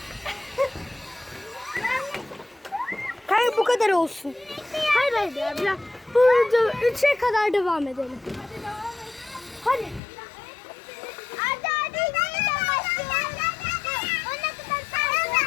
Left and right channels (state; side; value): drops out; right; at 10.0 s